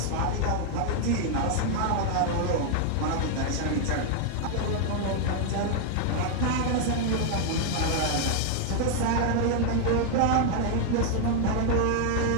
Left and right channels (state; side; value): different; both; correlation 0.00